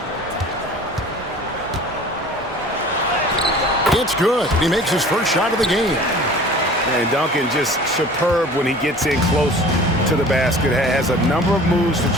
It's good. He makes his first shot of the game. And Duncan just superb when he gets in close to the basket. Has a number of moves to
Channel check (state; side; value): normal; both; correlation 0.44